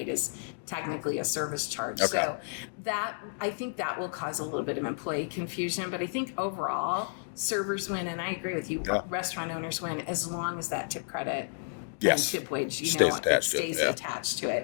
technically a service charge. Okay. So that, I think that will cause a little bit of employee confusion, but I think overall servers win. And I agree with you, restaurant owners win as long as that tip credit and tip wage, it stays attached to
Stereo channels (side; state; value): right; silent; digital silence